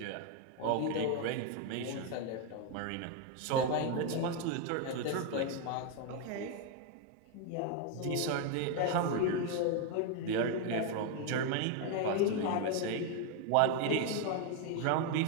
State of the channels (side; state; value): both; different; correlation 0.01